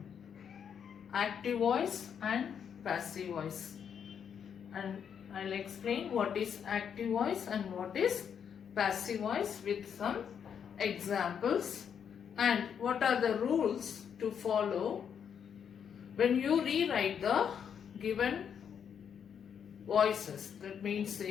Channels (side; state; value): right; quieter; 7.8 dB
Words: active voice and passive voice. And I'll explain what is active voice and what is passive voice with some examples and what are the rules to follow when you rewrite the given voices. That means